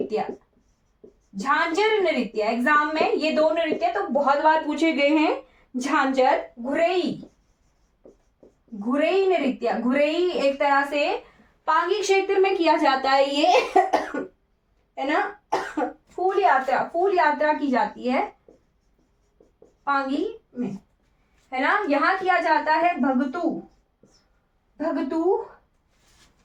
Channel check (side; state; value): both; identical; correlation 1.00